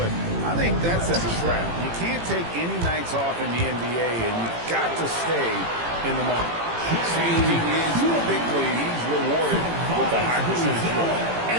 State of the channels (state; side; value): late; left; 18 ms